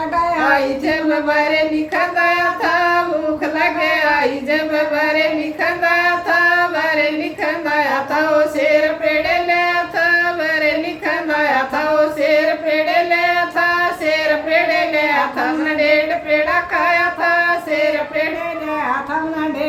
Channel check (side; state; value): both; identical; correlation 1.00